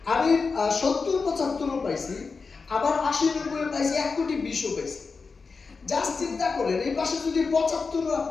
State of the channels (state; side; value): quieter; right; 4.7 dB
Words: আমি 70-75 পাইছি, আবার 80-90 পাইছি, 1,20,00,000 পাইছি। জাস্ট চিন্তা করেন, এই পাশে যদি 75